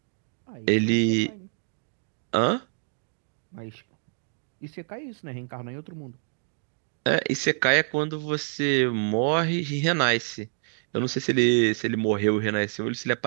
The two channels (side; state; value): left; silent; 60 dB below the other